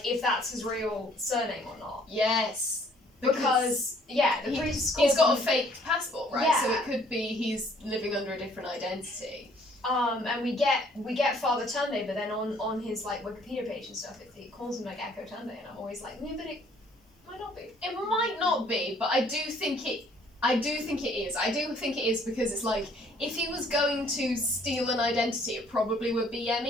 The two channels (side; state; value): both; normal; correlation 0.60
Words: if that's his real surname or not. Yes. Because the priest He's got a fake passport, right? Yeah. So it could be he's living under a different identity. and we get Father Tunde, but then on his like Wikipedia page and stuff, it calls him like Echo Tunde, and I'm always like, yeah, but it might not be. It might not be, but I do think it is. I do think it is because it's like, if he was going to steal an identity, it probably would be